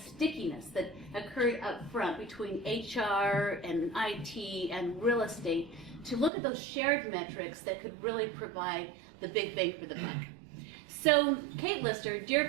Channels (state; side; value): drops out; left; at 6.3 s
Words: that occurred up front between HR and IT and real estate to look at those shared metrics that could really provide the big bang for the buck. So Kate Lister,